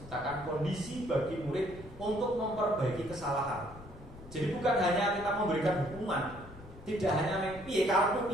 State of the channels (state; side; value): noise; left; rumble, 17 dB below the sound